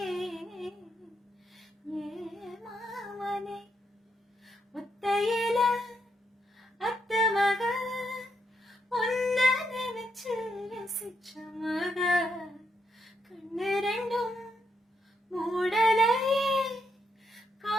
ஏ மாமனே ஒத்தையில அத்த மக ஒன்ன நினைச்சு ரசிச்ச மக கண்ணு ரெண்டும் மூடலையே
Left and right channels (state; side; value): normal; both; correlation 0.80